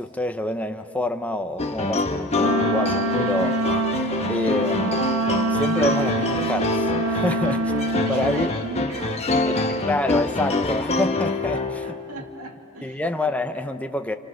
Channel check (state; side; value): normal; both; correlation 0.43